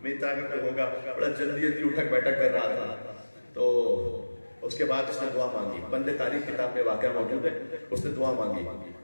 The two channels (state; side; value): inverted; both; correlation -1.00